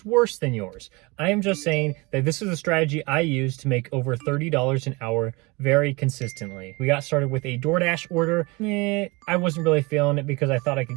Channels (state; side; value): quieter; left; 25.7 dB